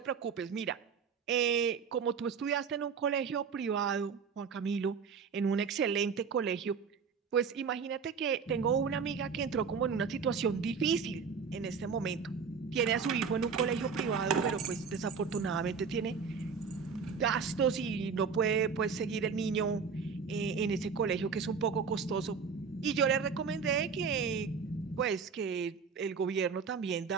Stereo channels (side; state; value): left; quieter; 5.8 dB